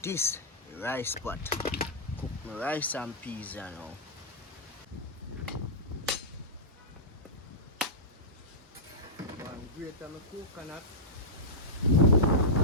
this rice pot. Cook my rice and peas, you know. grate my coconut.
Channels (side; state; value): both; normal; correlation -0.13